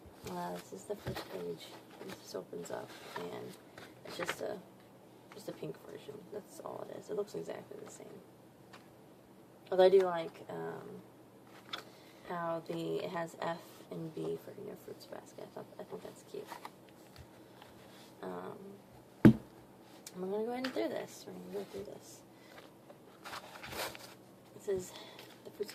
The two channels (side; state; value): both; identical; correlation 1.00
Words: this is the first page. This opens up, and it's just a pink version. That's all it is. It looks exactly the same. Although I do like how it has F and B for Fruits Basket. I think that's cute. I'm gonna go ahead and do this. We're gonna go through this. This is the Fruits